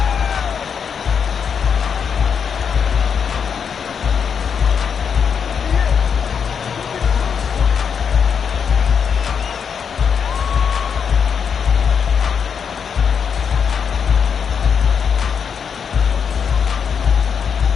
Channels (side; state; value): right; quieter; 6.8 dB